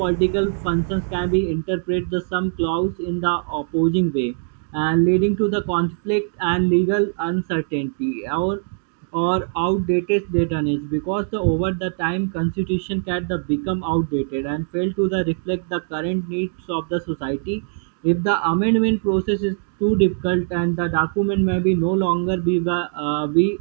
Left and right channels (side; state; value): left; silent; digital silence